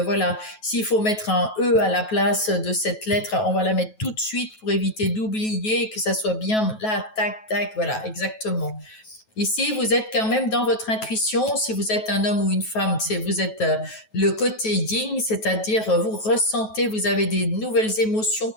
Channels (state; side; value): late; right; 9.3 ms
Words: voilà, s'il faut mettre un E à la place de cette lettre, on va la mettre tout de suite pour éviter d'oublier que ça soit bien là, tac, tac, voilà, exactement. Ici, vous êtes quand même dans votre intuition. Si vous êtes un homme ou une femme, vous êtes le côté yin, c'est-à-dire vous ressentez, vous avez des nouvelles émotions